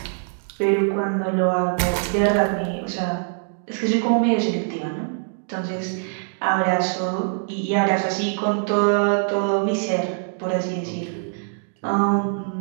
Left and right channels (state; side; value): silent; left; digital silence